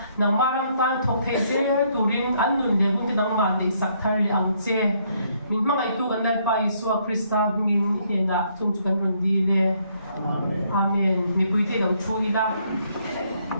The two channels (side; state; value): both; inverted; correlation -0.70